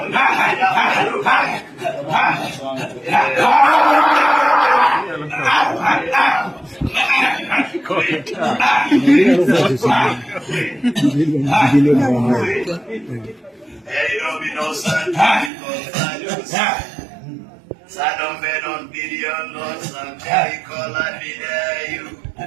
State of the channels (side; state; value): left; drops out; at 15.5 s